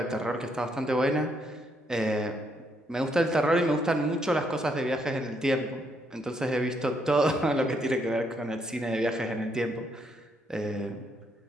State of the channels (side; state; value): both; normal; correlation 0.74